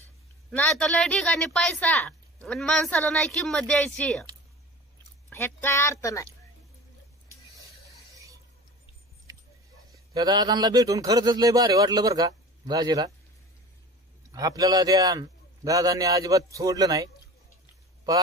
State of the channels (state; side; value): normal; both; correlation 0.37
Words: नाही तर लय ठिकाणी पैसा आणि माणसाला नाही किंमत द्यायची ह्यात काय अर्थ नाही त्या दादांना भेटून खरंच लय भारी वाटलं बरं का दाजीला आपल्याला त्या दादांनी अजिबात सोडलं नाही